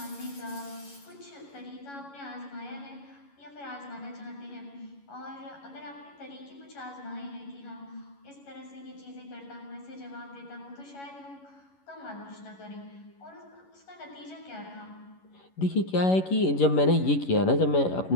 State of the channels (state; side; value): late; right; 11 ms